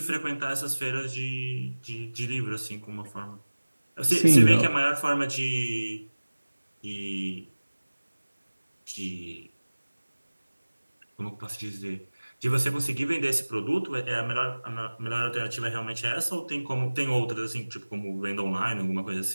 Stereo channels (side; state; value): both; inverted; correlation -1.00